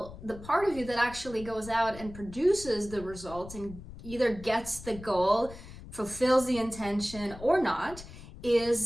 the part of you that actually goes out and produces the results and either gets the goal, fulfills the intention or not,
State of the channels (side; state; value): left; noise; rumble, 15 dB below the sound